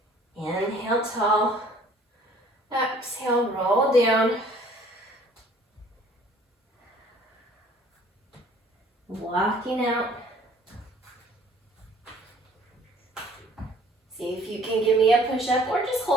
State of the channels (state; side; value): normal; both; correlation 0.55